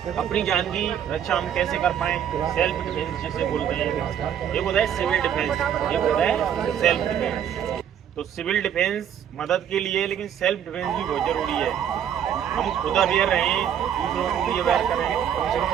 अपनी जान की रक्षा हम कैसे कर पाएं, सेल्फ डिफेंस जिसे बोलते हैं। एक होता है सिविल डिफेंस, एक होता है सेल्फ डिफेंस। तो सिविल डिफेंस मदद के लिए, लेकिन सेल्फ डिफेंस भी बहुत जरूरी है। हम खुद अवेयर रहें, दूसरों को भी अवेयर करें, कम से कम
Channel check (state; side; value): quieter; left; 9.2 dB